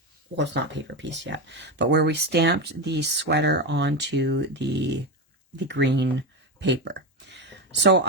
well, it's not paper piece yet, but where we stamped the sweater onto the green paper. So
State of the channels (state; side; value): normal; both; correlation 0.14